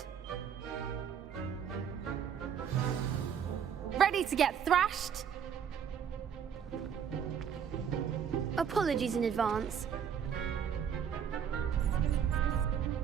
Ready to get thrashed? Apologies in advance.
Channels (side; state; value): left; quieter; 8.0 dB